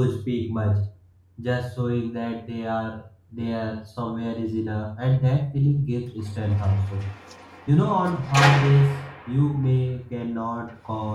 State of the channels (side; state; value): both; identical; correlation 1.00